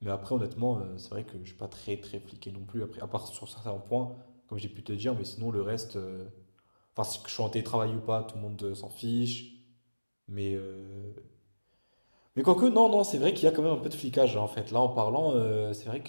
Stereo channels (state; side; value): inverted; both; correlation -1.00